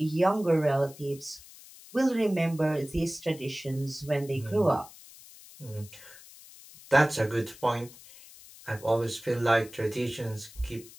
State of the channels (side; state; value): left; noise; hiss, 20 dB below the sound